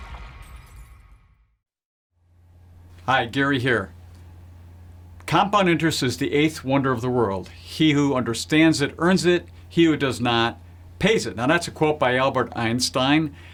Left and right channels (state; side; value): identical; both; correlation 1.00